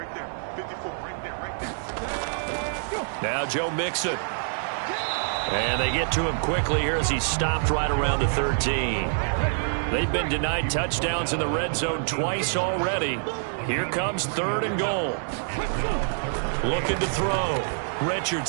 there. 54, right there, right there. Now Joe Mixon. And they get to him quickly here as he stopped right around the 13. They've been denied touchdowns in the red zone twice already. Here comes 3rd and goal. Looking to throw.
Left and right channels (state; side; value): silent; left; digital silence